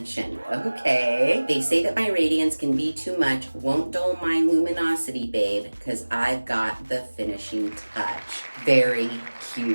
Okay. They say that my radiance can be too much. Won't dull my luminosity, babe, because I've got the finishing touch. Very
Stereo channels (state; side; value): inverted; both; correlation -1.00